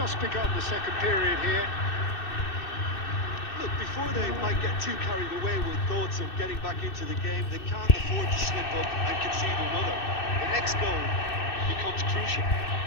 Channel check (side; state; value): right; late; 2.6 ms